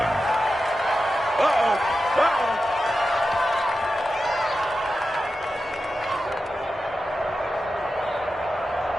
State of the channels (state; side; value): normal; both; correlation 0.91